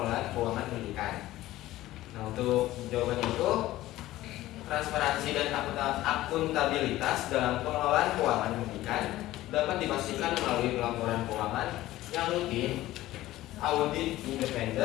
keuangan pendidikan. Nah, untuk jawabannya itu transparansi dan akuntabilitas dalam pengelolaan keuangan pendidikan dapat dipastikan melalui pelaporan keuangan yang rutin, audit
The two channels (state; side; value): quieter; right; 15.9 dB